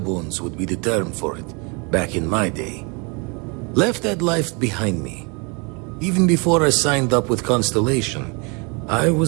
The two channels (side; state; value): left; quieter; 31.9 dB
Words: would be the term for it, back in my day. Left that life behind me. Even before I signed up with Constellation, I